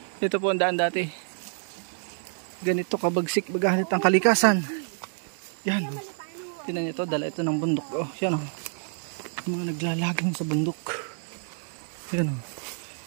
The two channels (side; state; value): left; silent; 60 dB below the other